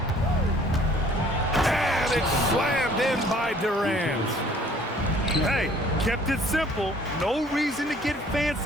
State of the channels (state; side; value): normal; both; correlation 0.56